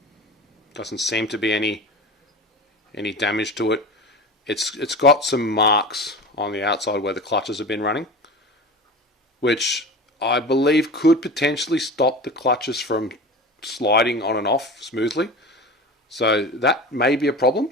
Doesn't seem to be any damage to it. It's got some marks on the outside where the clutches have been running, which I believe could potentially stop the clutches from sliding on and off smoothly. So that may be a problem.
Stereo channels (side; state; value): both; normal; correlation 0.32